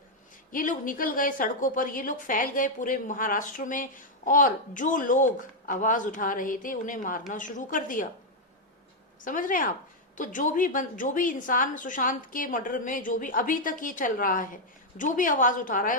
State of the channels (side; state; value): both; normal; correlation 0.00